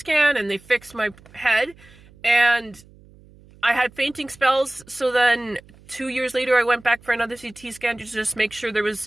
and they fixed my head, and I had fainting spells. So then 2 years later, I went back for another CT scan to just make sure there was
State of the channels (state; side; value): noise; right; hum, 25 dB below the sound